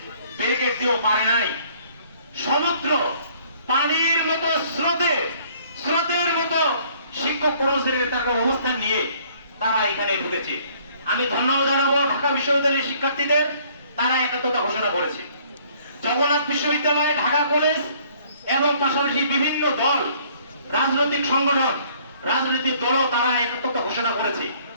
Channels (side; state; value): both; inverted; correlation -0.59